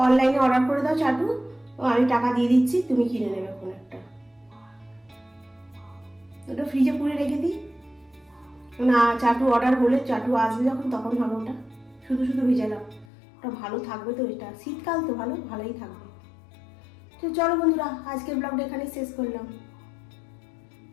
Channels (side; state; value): right; drops out; at 13.1 s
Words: অনলাইনে অর্ডার করে দাও চাটু, আমি টাকা দিয়ে দিচ্ছি, তুমি কিনে নেবে কোন একটা। ওটা ফ্রিজে পুরে রেখে দিই, না চাটু অর্ডার হলে চাটু আসবে যখন তখন হবে ওটা, শুধু শুধু ভিজালাম, ওটা ভালো থাকবে তো, এটা শীতকাল তো ভালোই থাকবে। তো চলো বন্ধুরা, আজকের ব্লগটা এখানে শেষ করলাম।